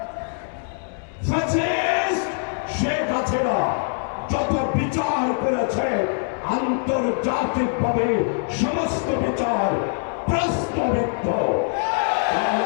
ফ্যাসিস্ট শেখ হাসিনা যত বিচার করেছে আন্তর্জাতিকভাবে সমস্ত বিচার প্রশ্নবিদ্ধ।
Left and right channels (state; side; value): silent; right; 59 dB below the other